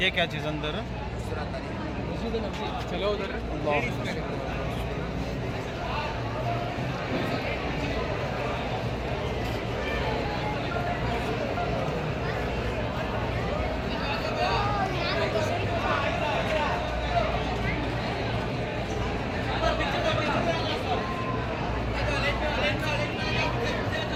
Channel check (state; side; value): identical; both; correlation 1.00